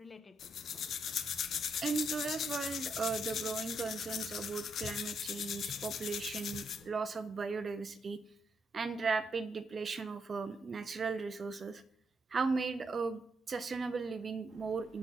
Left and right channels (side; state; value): both; normal; correlation 0.78